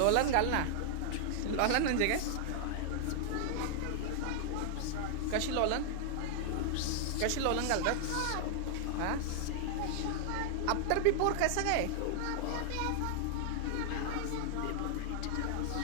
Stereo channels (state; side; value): different; both; correlation 0.00